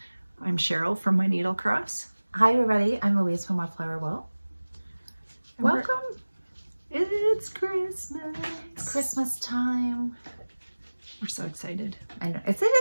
I'm Cheryl from My Needle Cross. Hi, everybody. I'm Louise from Wildflower Will. Welcome. It's Christmas. It's Christmas time. We're so excited. I know. It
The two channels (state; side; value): inverted; both; correlation -1.00